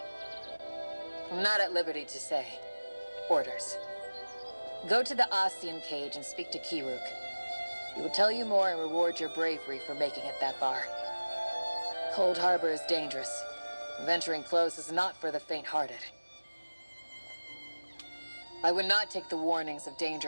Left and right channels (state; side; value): inverted; both; correlation -1.00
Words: I'm not at liberty to say. Orders. Go to the Ostian cage and speak to Kiruk. He will tell you more and reward your bravery for making it that far. Cold Harbor is dangerous. Venturing close is not for the faint-hearted. I would not take the warnings of